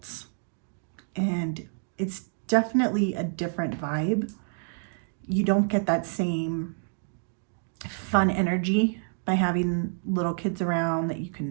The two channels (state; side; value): silent; left; 59 dB below the other